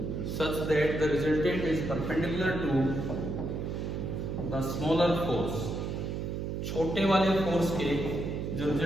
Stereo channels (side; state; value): right; noise; hum, 3 dB below the sound